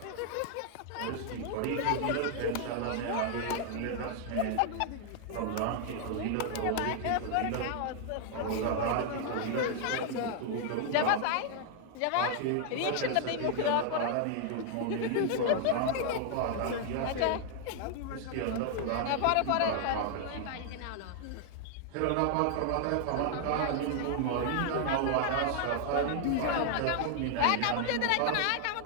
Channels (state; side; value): different; both; correlation 0.00